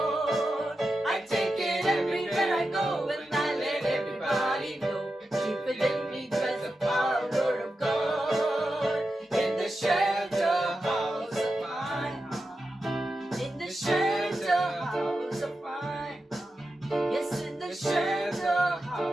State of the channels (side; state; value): both; normal; correlation 0.90